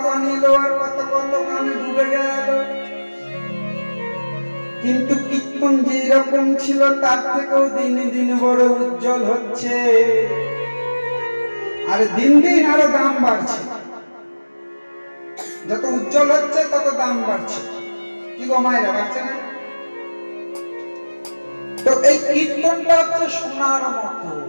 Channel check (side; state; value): both; inverted; correlation -1.00